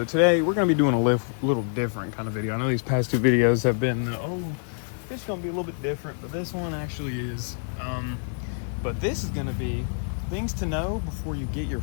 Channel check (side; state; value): right; silent; 61 dB below the other